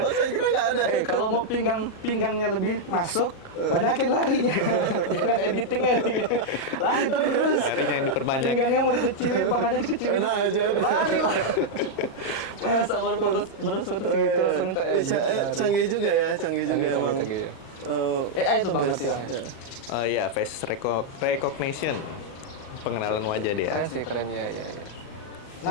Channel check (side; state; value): right; late; 38 ms